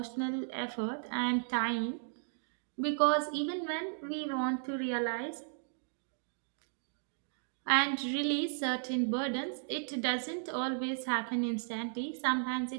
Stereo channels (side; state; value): left; silent; digital silence